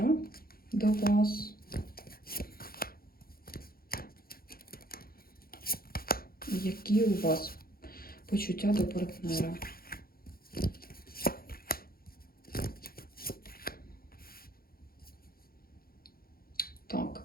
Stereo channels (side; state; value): right; late; 0.43 ms